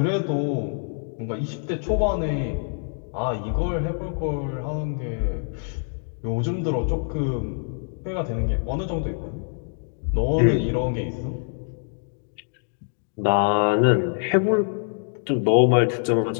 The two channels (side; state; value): right; silent; 58 dB below the other